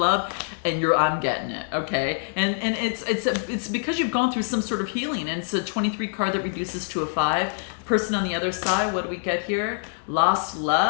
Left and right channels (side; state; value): right; silent; digital silence